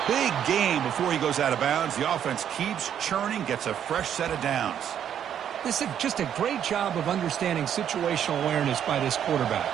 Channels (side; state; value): left; quieter; 9.4 dB